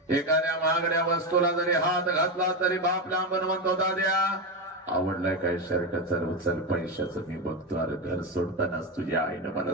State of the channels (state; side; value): normal; both; correlation 0.13